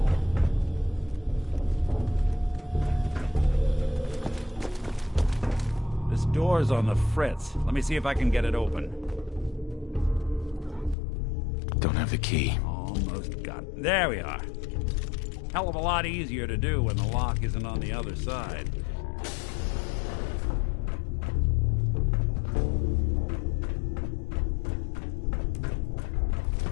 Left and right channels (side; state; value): right; drops out; at 11.0 s